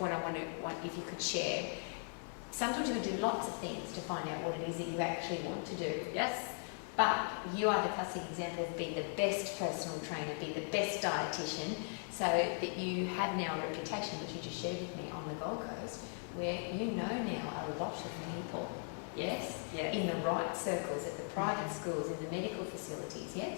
I want if you could share. Sometimes you can do lots of things to find out what it is that you actually want to do. Yes. But you are the classic example of being the best personal trainer, be the best dietitian, so that you have now a reputation, which you just shared with me on the Gold Coast, where you know now a lot of people. Yes. Yes. In the right circles, at the private schools, in the medical facilities. Yes.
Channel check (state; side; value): silent; right; 52 dB below the other